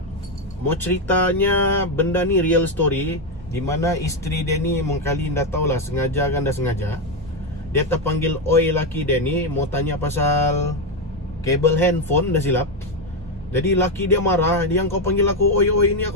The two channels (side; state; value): both; normal; correlation 0.07